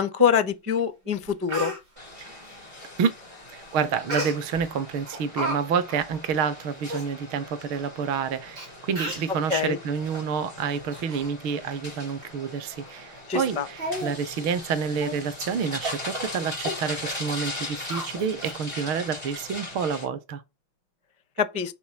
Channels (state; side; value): late; left; 5.8 ms